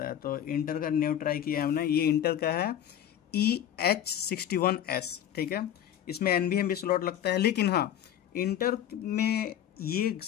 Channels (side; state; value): right; quieter; 10.5 dB